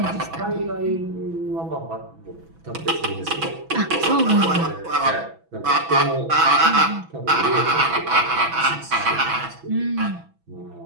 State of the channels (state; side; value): late; left; 6.1 ms